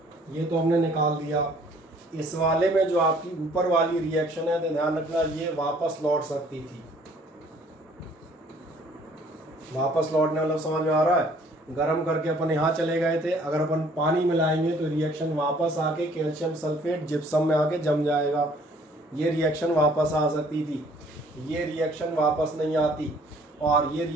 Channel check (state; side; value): normal; both; correlation 0.58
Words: ये तो हमने निकाल दिया। इस वाले में जो आपकी ऊपर वाली रिएक्शन है तो ध्यान रखना ये वापस लौट सकती थी। वापस लौटने वाला समझ में आ रहा है? गर्म करके अपन यहाँ चले गए थे, अगर अपन पानी मिलाएंगे तो रिएक्शन वापस आके कैल्शियम सल्फेट जिप्सम में आके जम जाएगा। ये रिएक्शन वापस आ सकती थी, ये रिएक्शन वापस नहीं आती, और ये